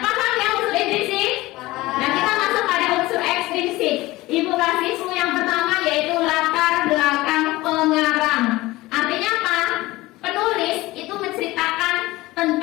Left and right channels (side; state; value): right; quieter; 19.1 dB